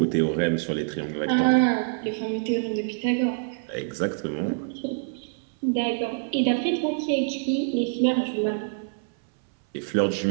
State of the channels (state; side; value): silent; left; 61 dB below the other